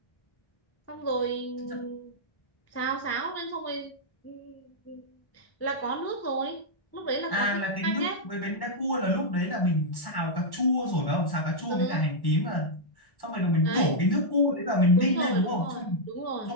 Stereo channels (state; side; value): late; right; 1.1 ms